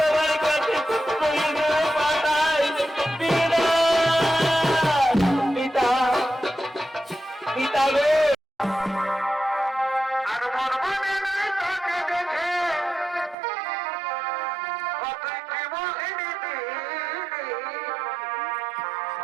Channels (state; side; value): drops out; left; at 13.4 s